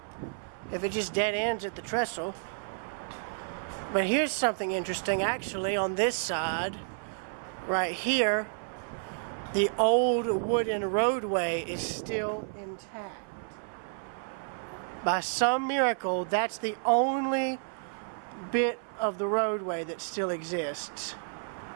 If it just dead ends at the trestle. But here's something interesting, actually, on this side, right here, the old wooden roadway is still intact. By some miracle, that's the only bit of the roadway that still exists.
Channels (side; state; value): left; silent; 56 dB below the other